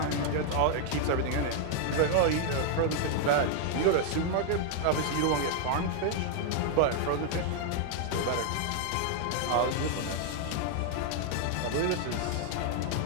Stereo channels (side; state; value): both; different; correlation 0.00